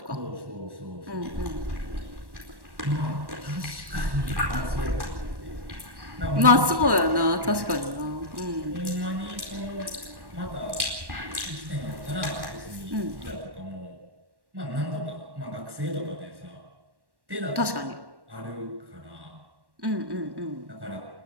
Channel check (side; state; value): left; late; 1.1 ms